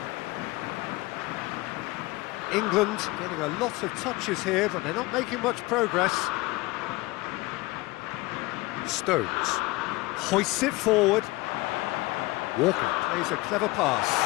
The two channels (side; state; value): right; quieter; 21.5 dB